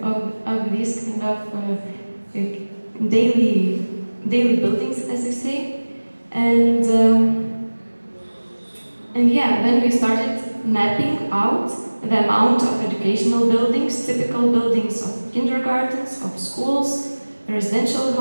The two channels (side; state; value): both; inverted; correlation -1.00